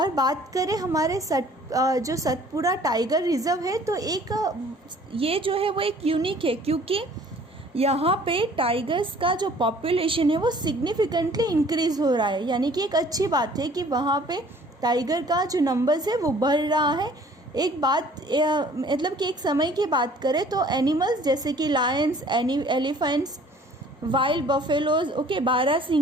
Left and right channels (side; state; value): both; normal; correlation 0.53